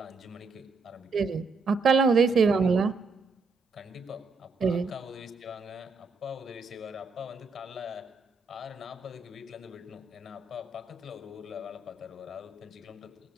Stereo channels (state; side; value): quieter; left; 4.1 dB